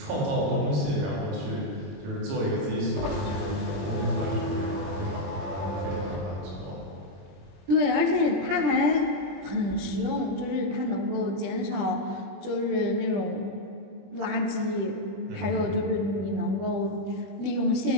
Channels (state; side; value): late; left; 20 ms